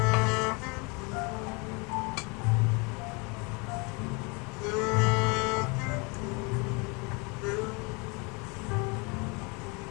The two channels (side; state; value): right; quieter; 30.0 dB